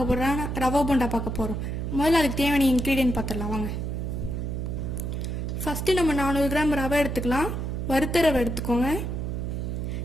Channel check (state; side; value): noise; right; hum, 3 dB below the sound